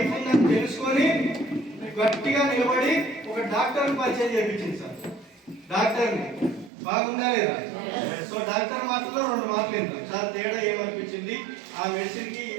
ఉందని తెలుసుకొని గట్టిగా నిలబడి ఒక డాక్టర్ పరిచయం చేయించింది సార్. డాక్టర్ని బాగుందా లేదా? సో డాక్టర్ మాటల్లో 2 మాటలు ఏంటో సార్ తేడా ఏమనిపించింది, ఆ మెడిసిన్ కి ఈ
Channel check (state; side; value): drops out; left; at 6.7 s